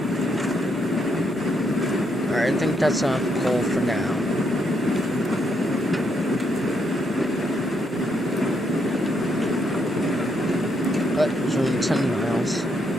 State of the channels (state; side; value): normal; both; correlation 0.76